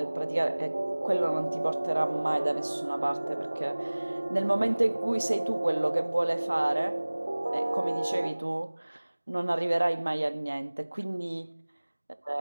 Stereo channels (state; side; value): inverted; both; correlation -1.00